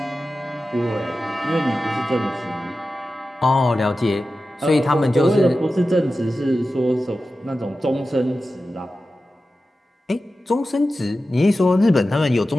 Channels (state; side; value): normal; both; correlation 0.93